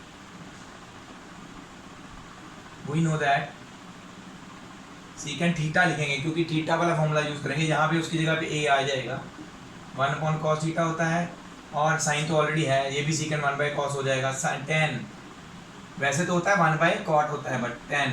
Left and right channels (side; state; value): both; identical; correlation 1.00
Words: we know that secant theta लिखेंगे, क्योंकि थीटा वाला फॉर्मूला यूज करेंगे, यहाँ पे उसकी जगह पे ए आ जाएगा। 1/cos थीटा होता है, और साइन तो ऑलरेडी है, ये भी सीकेंट 1/cos हो जाएगा। टेन वैसे तो होता है 1/cot होता है, बट टेन